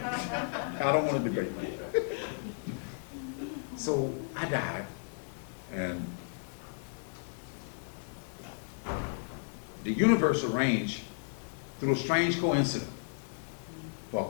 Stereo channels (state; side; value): silent; right; digital silence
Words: I don't want to debate. So I died, and the universe arranged, through a strange coincidence, for